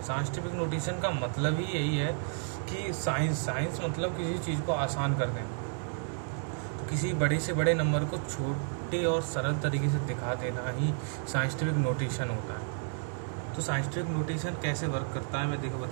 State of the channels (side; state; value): left; silent; 57 dB below the other